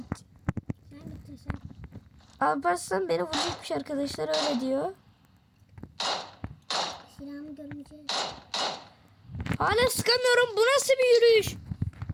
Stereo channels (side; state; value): both; identical; correlation 1.00